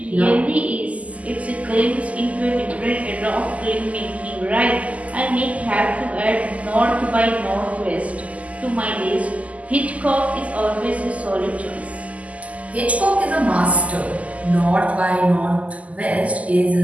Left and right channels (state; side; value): late; left; 0.070 ms